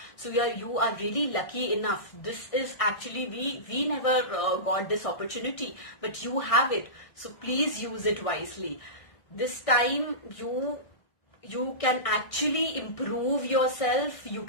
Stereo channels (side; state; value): right; late; 1.6 ms